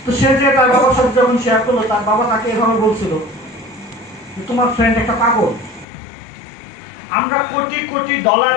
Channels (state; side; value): drops out; right; at 5.9 s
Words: তো সে যে তার বাবার সাথে যখন শেয়ার করলো, তার বাবা তাকে এভাবে বলছিল যে তোমার ফ্রেন্ড একটা পাগল, আমরা কোটি কোটি ডলার